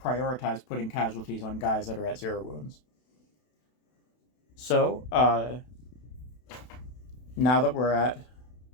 prioritize putting casualties on guys that are at 0 wounds. So now that we're at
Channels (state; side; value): late; right; 32 ms